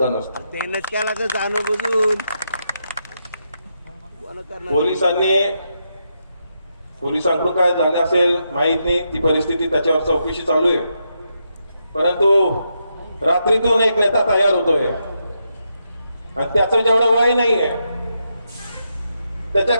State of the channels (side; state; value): both; inverted; correlation -0.83